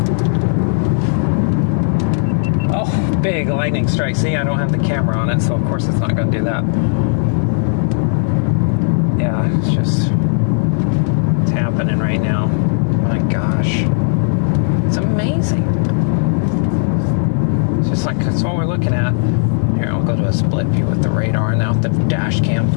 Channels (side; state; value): right; silent; digital silence